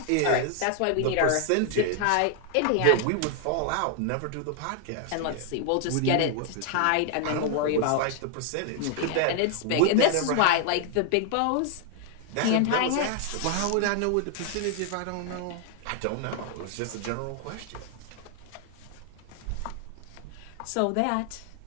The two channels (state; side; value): different; both; correlation 0.00